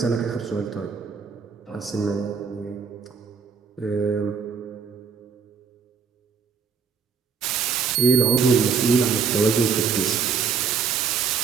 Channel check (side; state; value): left; quieter; 6.0 dB